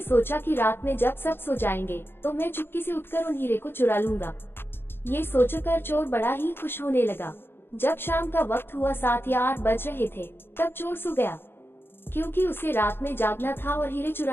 सोचा कि रात में जब सब सो जाएंगे तो मैं चुपके से उठकर उन हीरे को चुरा लूंगा। ये सोचकर चोर बड़ा ही खुश होने लगा। जब शाम का वक्त हुआ, 7 या 8 बज रहे थे, तब चोर सो गया। क्योंकि उसे रात में जागना था और हीरे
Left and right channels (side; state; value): right; late; 0.11 ms